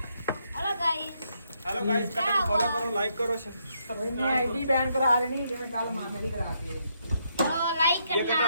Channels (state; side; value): inverted; both; correlation -0.76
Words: hello guys hello guys Cuttack follow ਕਰੋ ਲਾਈਕ ਕਰੋ ਇਹਨੇ ਆਈਡੀ ਬੈਨ ਕਰਾ ਲੈਣੀ ਜਿਵੇਂ ਕੱਲ ਮਾਮੇ ਦੀ ਕਰਾਤੀ ਹੈ तो लाइक ये कितना